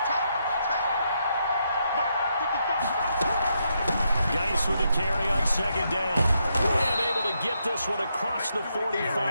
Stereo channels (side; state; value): both; inverted; correlation -0.80